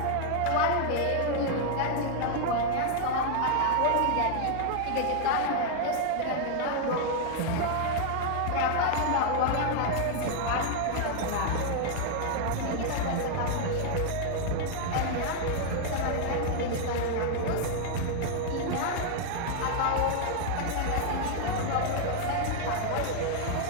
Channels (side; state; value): both; different; correlation 0.00